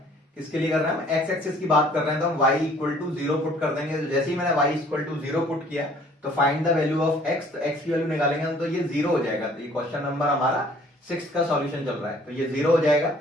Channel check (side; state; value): both; normal; correlation 0.56